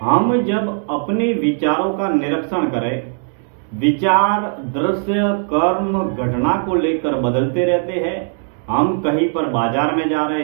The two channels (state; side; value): silent; left; 59 dB below the other